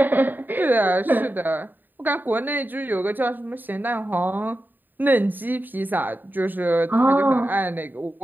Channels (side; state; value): left; late; 0.090 ms